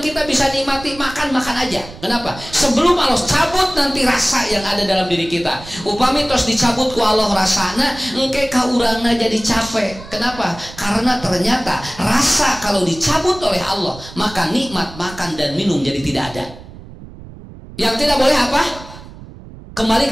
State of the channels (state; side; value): noise; right; rumble, 16 dB below the sound